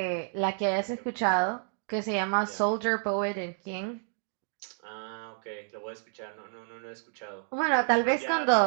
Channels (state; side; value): silent; left; 58 dB below the other